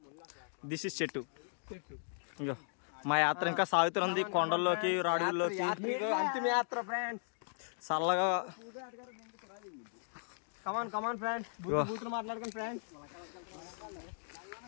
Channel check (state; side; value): silent; right; digital silence